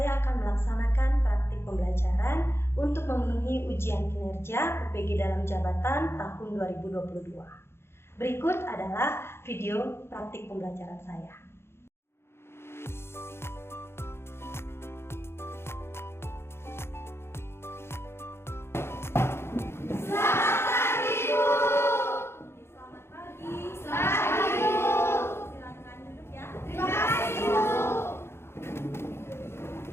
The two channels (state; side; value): late; right; 0.12 ms